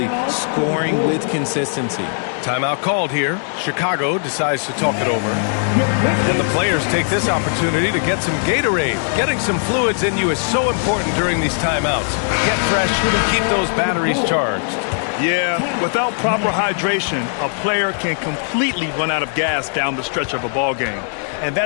scoring with consistency. Timeout called here. Chicago decides to talk it over. And the players take this opportunity to get some Gatorade. Getting some fluids in you is so important during these timeouts. Get fresh, keep those batteries charged. Yeah, without proper hydration, a player can completely run out of gas down the stretch of a ball game. And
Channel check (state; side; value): silent; right; digital silence